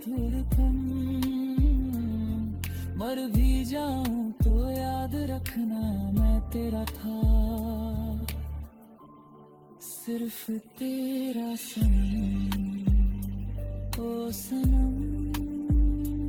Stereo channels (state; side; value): identical; both; correlation 1.00